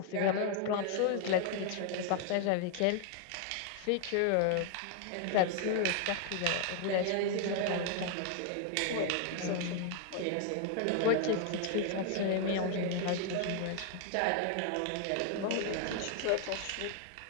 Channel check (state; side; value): different; both; correlation 0.00